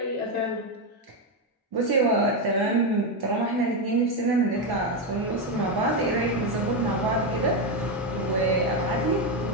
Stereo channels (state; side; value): normal; both; correlation 0.08